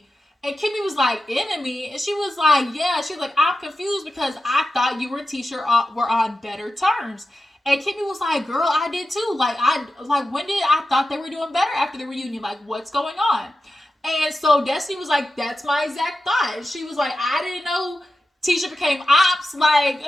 And Kimmi was like, enemy? And she was like, yeah. She was like, I'm confused because I thought you and Tisha were on better terms. And Kimmi was like, girl, I did too. Like, when did I thought they were doing better after the reunion? Like, what's going on? And so Destiny was like, that's my exact thought. She was like, I didn't know Tisha became ops. Like,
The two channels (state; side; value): normal; both; correlation 0.92